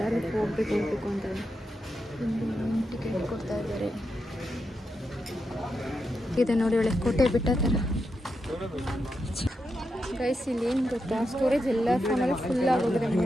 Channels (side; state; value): both; normal; correlation 0.86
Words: ಹೋಗ್ಬೇಕು ಅಂತ ಟಿಕೆಟ್ ಕೊಡ್ತಾ ಇದ್ದಾರೆ. ಇದೆ ನೋಡಿ, ಒಳ್ಳೆ ಕೋಟೆ ಬಿಟ್ಟ ಥರ ಗೈಸ್. ಇಲ್ಲಿ ಏನು ಗೊತ್ತಾ, ಸ್ಟೋರೇಜ್ ಎಲ್ಲ ಫೋನಲ್ಲಿ ಫುಲ್ ಆಗೋಗಿದೆ